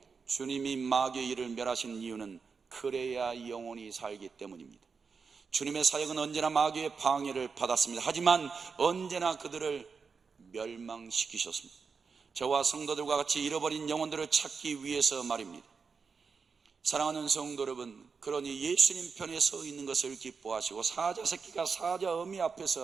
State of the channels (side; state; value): left; quieter; 5.3 dB